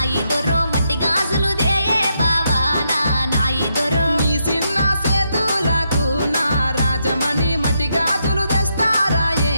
ఇద్దరు మట్టి గాజులు దేయే బావా నా ఇద్దరు నీ చిన్న సేతులకు నా రాజమణి మట్టి గాజులు తెస్తారాయే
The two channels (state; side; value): inverted; both; correlation -0.80